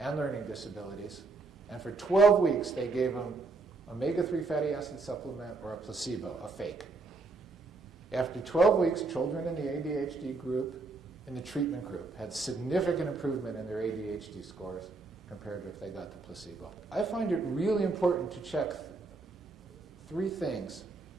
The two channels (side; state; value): left; quieter; 3.8 dB